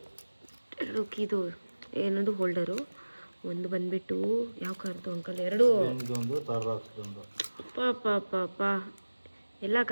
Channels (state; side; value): inverted; both; correlation -1.00